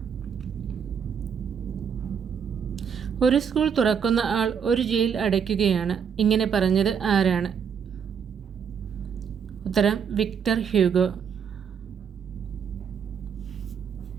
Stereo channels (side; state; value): left; quieter; 7.2 dB